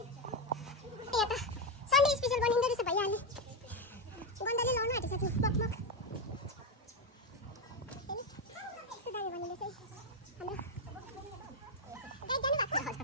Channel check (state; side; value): normal; both; correlation 0.07